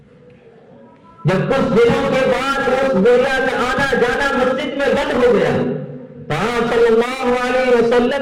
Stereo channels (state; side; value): identical; both; correlation 1.00